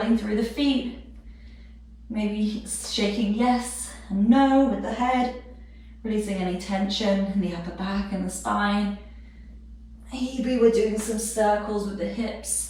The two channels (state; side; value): identical; both; correlation 1.00